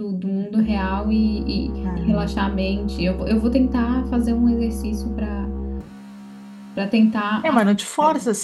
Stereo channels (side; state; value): both; identical; correlation 1.00